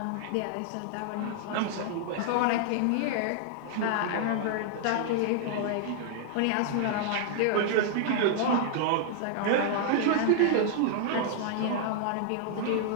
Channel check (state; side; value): different; both; correlation -0.01